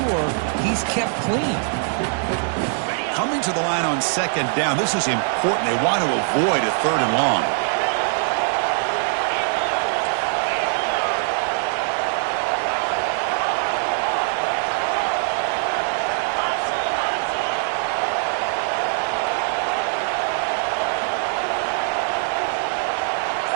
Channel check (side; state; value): left; silent; 64 dB below the other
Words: he's kept clean. Coming to the line on 2nd down, this is important. They want to avoid a 3rd and long.